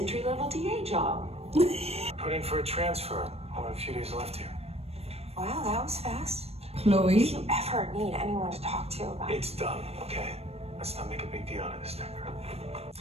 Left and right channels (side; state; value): left; late; 0.29 ms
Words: DA job. Put in for a transfer. Only a few days left here. Wow, that was fast. Chloe. If you ever need anyone to talk to about It's done, okay? Let's not make a big deal out of this thing.